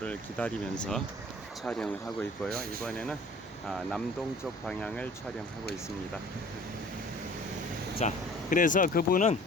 기다리면서 촬영을 하고 있고요. 이번에는 남동쪽 방향을 촬영하고 있습니다. 자, 그래서 그분은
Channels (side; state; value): both; normal; correlation 0.49